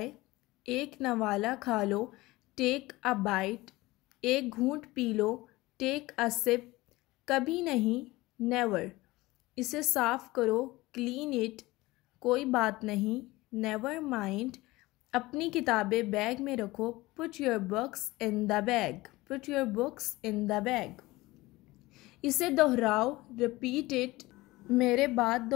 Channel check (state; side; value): quieter; right; 19.9 dB